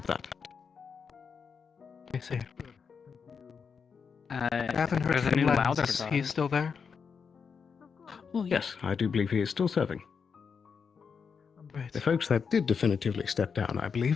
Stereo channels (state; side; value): quieter; right; 6.0 dB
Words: that. I see. I haven't heard there's a from new Lens. louder Is guy. he still there? Oh, yes, I do believe he is still serving. Right. The folks that did definitively step down, I